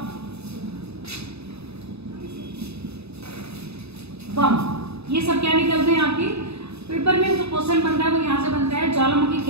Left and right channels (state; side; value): late; left; 0.79 ms